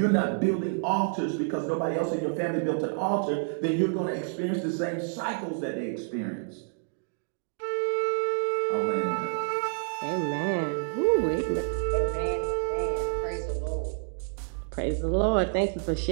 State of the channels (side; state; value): left; silent; 57 dB below the other